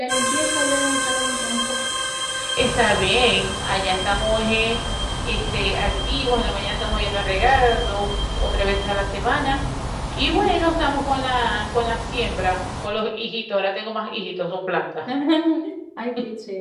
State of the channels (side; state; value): both; identical; correlation 1.00